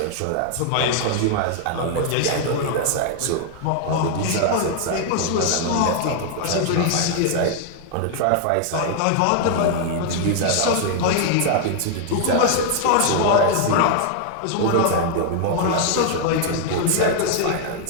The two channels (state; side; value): different; both; correlation 0.00